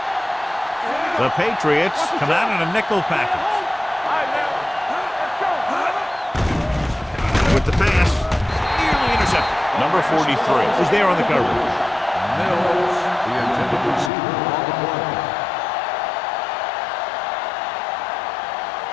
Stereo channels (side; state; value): right; drops out; at 14.1 s